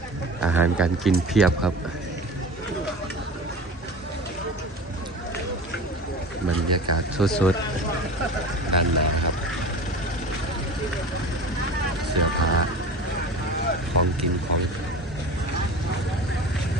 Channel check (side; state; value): both; normal; correlation 0.34